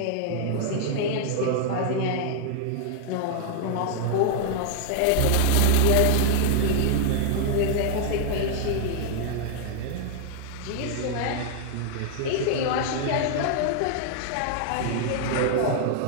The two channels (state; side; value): different; both; correlation 0.00